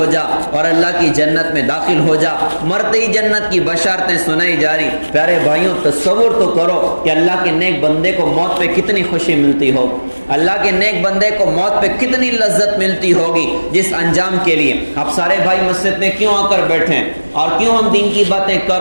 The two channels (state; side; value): inverted; both; correlation -1.00